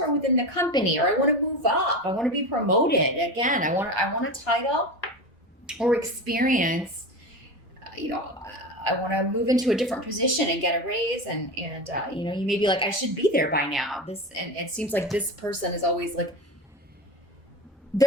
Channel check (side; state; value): both; normal; correlation 0.25